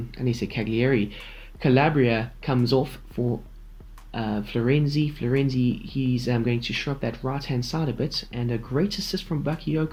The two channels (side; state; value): both; identical; correlation 1.00